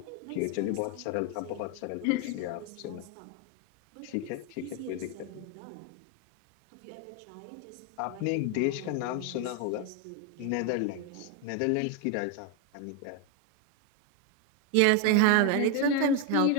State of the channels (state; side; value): different; both; correlation 0.01